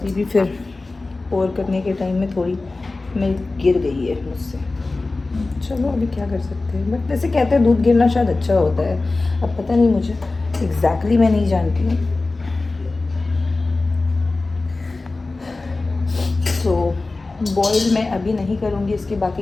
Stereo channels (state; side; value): quieter; right; 3.4 dB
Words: भी फिर पोर करने के टाइम में थोड़ी मिल्क गिर गई है मुझसे। चलो अभी क्या कर सकते हैं, बट वैसे कहते हैं दूध गिरना शायद अच्छा होता है। अब पता नहीं, मुझे एग्जैक्टली मैं नहीं जानती हूँ। तो बॉईल मैं अभी नहीं करूँगी, इसके